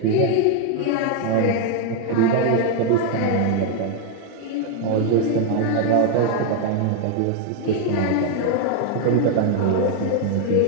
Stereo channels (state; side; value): different; both; correlation 0.00